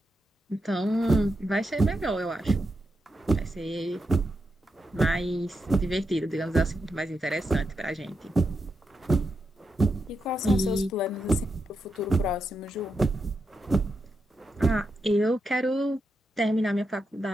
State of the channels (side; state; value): both; normal; correlation 0.85